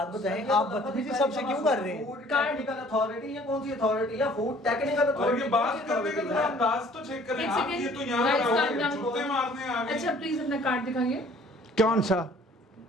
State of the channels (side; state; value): both; normal; correlation 0.55